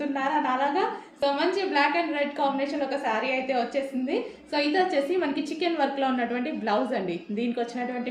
నాలాగా? సో మంచి బ్లాక్ అండ్ రెడ్ కాంబినేషన్లో ఒక శారీ అయితే వచ్చేసింది. సో ఇది వచ్చేసి మనకి చికెన్ వర్క్లో ఉన్నటువంటి బ్లౌజ్ అండి. దీనికి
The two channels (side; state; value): both; identical; correlation 1.00